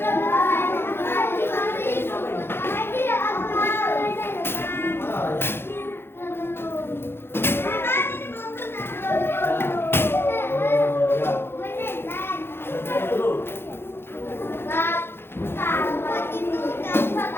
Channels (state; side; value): late; right; 0.11 ms